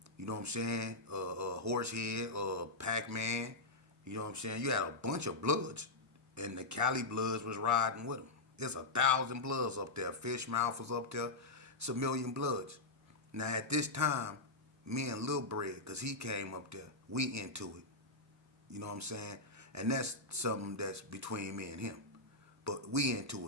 you know what I'm saying, Horsehead, Pac-Man, you know what I'm saying. You had a bunch of Bloods, and the Cali Bloods was riding with them. There's 1,000 Bloods up there. Fishmouth was up there. It's 1,000,000 Bloods. Now at this time, me and Lil Bread, because he came up there, we into it. You know what I'm saying? And that's something that's between me and him. But we into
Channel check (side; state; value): right; quieter; 3.1 dB